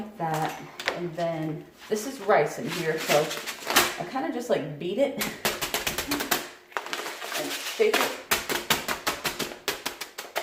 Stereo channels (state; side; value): identical; both; correlation 1.00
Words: that, and then this is rice in here, so I kind of just like beat it and shake it